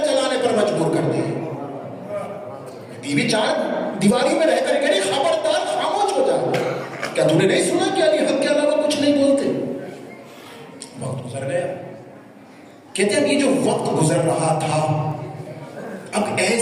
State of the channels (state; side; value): identical; both; correlation 1.00